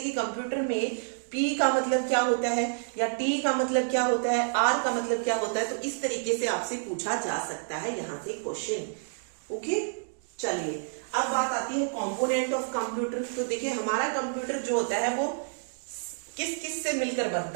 कि कंप्यूटर में P का मतलब क्या होता है, या T का मतलब क्या होता है, R का मतलब क्या होता है। तो इस तरीके से आपसे पूछा जा सकता है यहां से क्वेश्चन, ओके। चलिए, अब बात आती है कंपोनेंट ऑफ कंप्यूटर। तो देखिए, हमारा कंप्यूटर जो होता है वो किस किस से मिलकर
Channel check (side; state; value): left; silent; digital silence